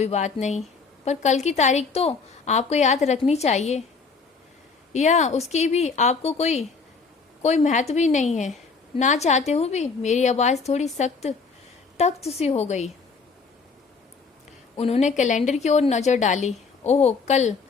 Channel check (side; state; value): right; quieter; 4.8 dB